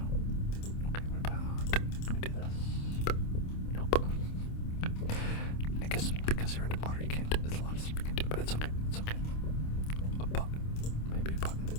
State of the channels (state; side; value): late; right; 27 ms